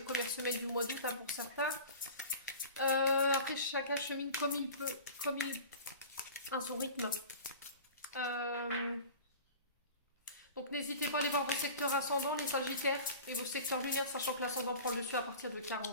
première semaine du mois d'août, hein, pour certains. Après, chacun chemine comme il peut, comme il à son rythme. Donc n'hésitez pas à aller voir vos secteurs ascendants, les Sagittaires, et vos secteurs lunaires, sachant que l'ascendant prend le dessus à partir de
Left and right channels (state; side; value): inverted; both; correlation -0.38